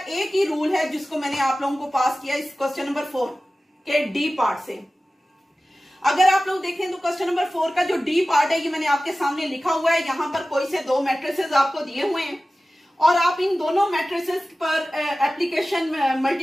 ही रूल है जिसको मैंने आप लोगों को पास किया इस क्वेश्चन नंबर 4 के डी पार्ट से। अगर आप लोग देखें तो क्वेश्चन नंबर 4 का जो डी पार्ट है ये मैंने आपके सामने लिखा हुआ है। यहाँ पर कोई से 2 मैट्रिसेस आपको दिए हुए हैं और आप इन दोनों मैट्रिसेस पर एप्लीकेशन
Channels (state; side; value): normal; both; correlation 0.96